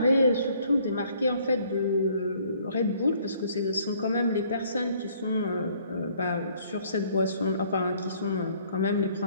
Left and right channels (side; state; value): both; inverted; correlation -0.61